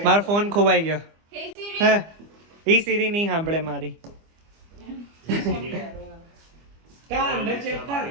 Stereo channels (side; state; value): left; late; 25 ms